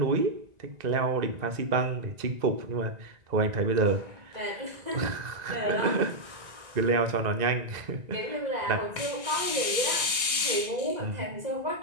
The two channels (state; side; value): late; left; 1.9 ms